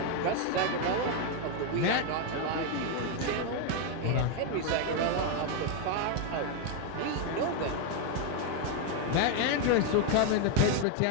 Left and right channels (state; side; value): different; both; correlation 0.01